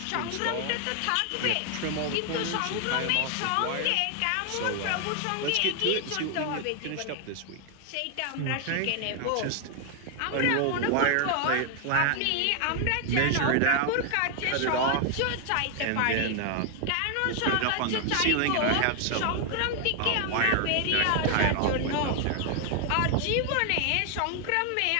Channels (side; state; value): both; different; correlation 0.00